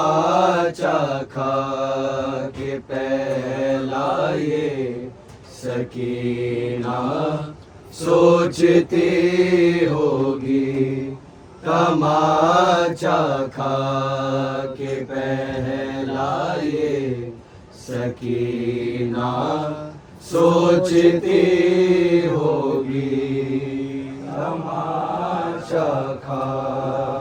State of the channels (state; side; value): identical; both; correlation 1.00